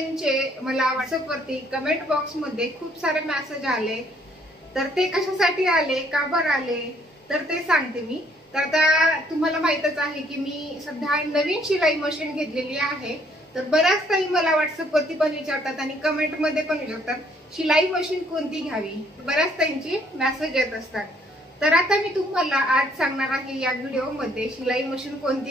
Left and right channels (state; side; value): normal; both; correlation 0.65